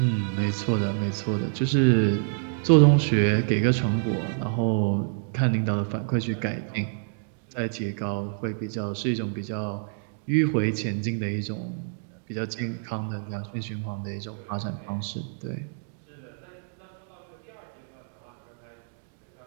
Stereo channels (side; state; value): left; silent; digital silence